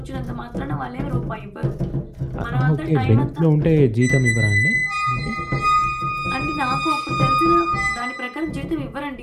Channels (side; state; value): both; identical; correlation 1.00